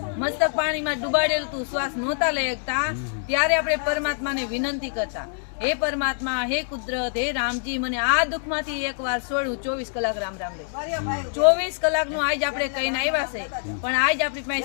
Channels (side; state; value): right; silent; digital silence